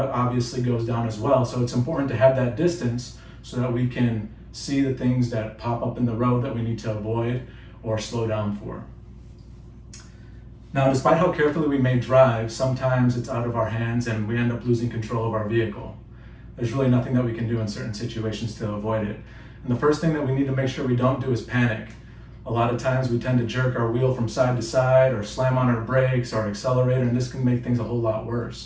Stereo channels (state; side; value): identical; both; correlation 1.00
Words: goes down as well, so it's important to have that distance so that we can see the things that pop up in the road that we need to avoid or slow down for. Now, despite how carefully we may drive, sometimes it's out of our hands and we end up losing control of our vehicle. There's really nothing that we can do in certain situations to avoid it. And the first thing that we need to make sure we don't do is panic. A lot of times we tend to jerk our wheel from side to side or slam on our brakes or accelerator, and this can make things a whole lot